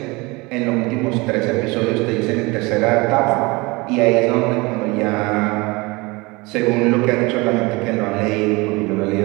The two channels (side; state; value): left; quieter; 24.7 dB